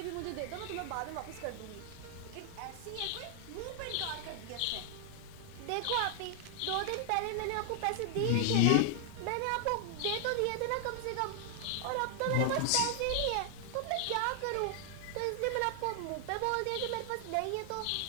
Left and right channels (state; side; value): different; both; correlation 0.00